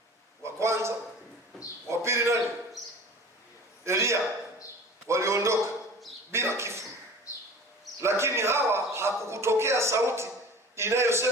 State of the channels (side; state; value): both; normal; correlation 0.41